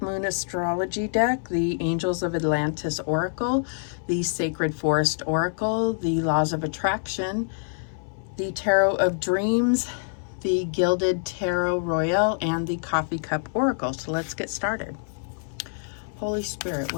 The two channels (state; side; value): silent; right; 61 dB below the other